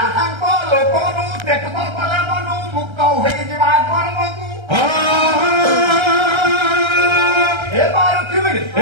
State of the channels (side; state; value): left; late; 1.3 ms